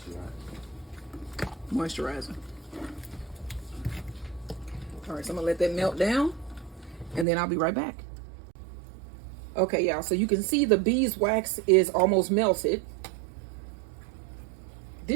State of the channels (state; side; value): drops out; left; at 7.2 s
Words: moisturizer. All right, so I'm gonna let that melt down, and then I'll be right back. Okay, y'all, so you can see the beeswax is almost melted.